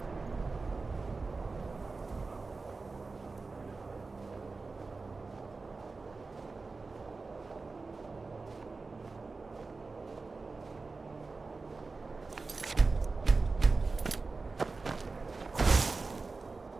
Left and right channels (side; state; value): left; quieter; 3.9 dB